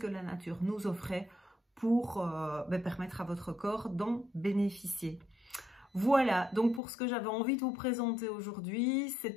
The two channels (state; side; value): drops out; right; at 6.8 s